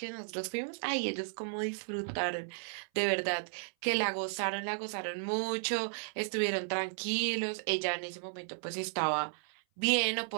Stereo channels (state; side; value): silent; left; 55 dB below the other